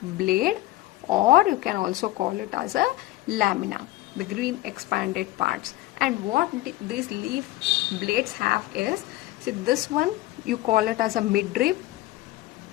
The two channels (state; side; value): quieter; right; 17.4 dB